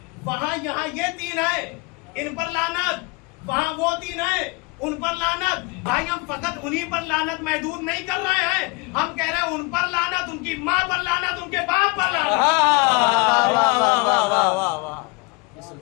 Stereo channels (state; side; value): quieter; right; 27.4 dB